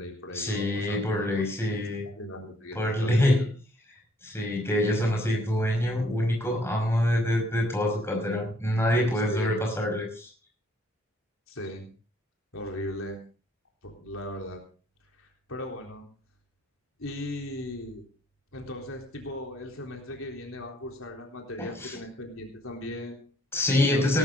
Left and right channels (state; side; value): normal; both; correlation 0.65